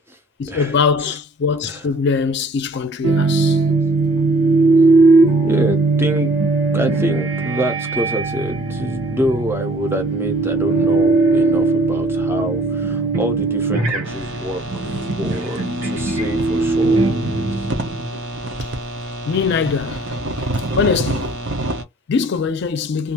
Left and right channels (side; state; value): both; normal; correlation 0.55